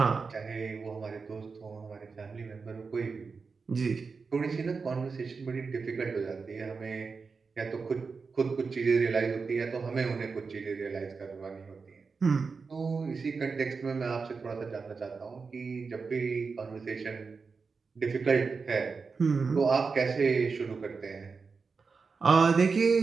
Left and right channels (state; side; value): quieter; left; 4.8 dB